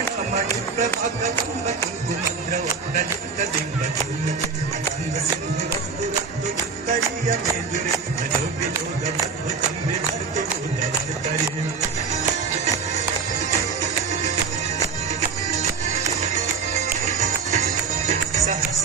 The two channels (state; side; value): quieter; left; 5.2 dB